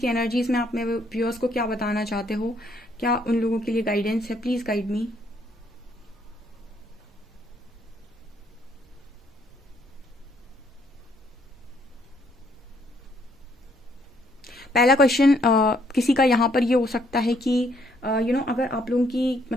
एनर्जीज में। आप मेरे व्यूअर्स को क्या बताना चाहते हो, क्या उन लोगों के लिए गाइडेंस है, प्लीज गाइड मी। पहला क्वेश्चन किसी का यहाँ पर ये हो सकता है कि अगर आप लोगों की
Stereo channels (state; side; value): normal; both; correlation 0.69